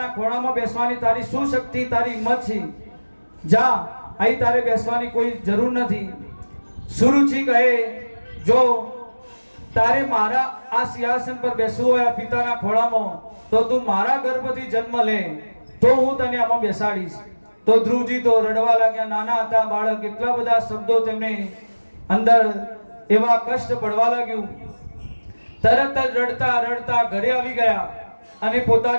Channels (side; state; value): both; inverted; correlation -1.00